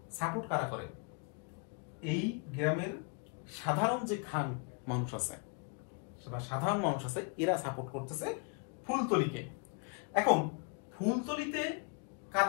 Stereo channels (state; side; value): quieter; right; 35.4 dB